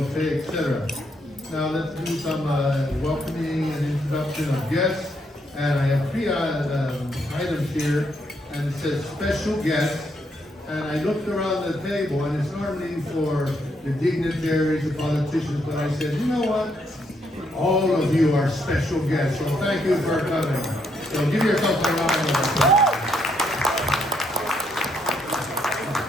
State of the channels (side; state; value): both; normal; correlation 0.75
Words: etc. Now, let's do some welcoming and introduction of guests. And I have three items here, and it says special guests. And I looked around the table, and it's normally for the dignitaries, the politicians, but I said, you know what? All of you are special guests, so thank you for coming. So give yourself a round of applause.